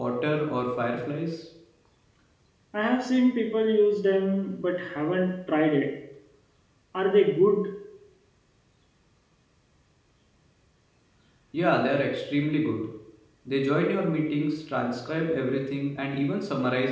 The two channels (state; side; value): identical; both; correlation 1.00